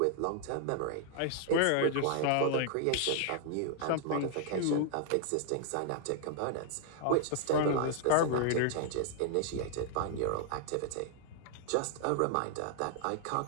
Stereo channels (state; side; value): different; both; correlation 0.00